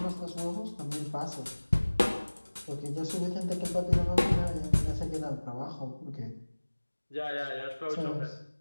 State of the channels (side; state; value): both; inverted; correlation -1.00